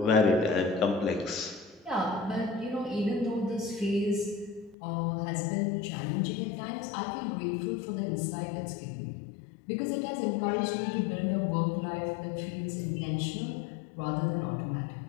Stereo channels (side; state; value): right; drops out; at 4.8 s